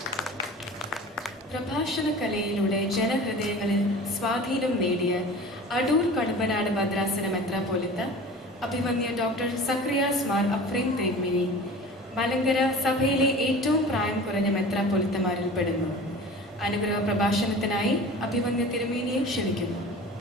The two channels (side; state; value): both; normal; correlation 0.39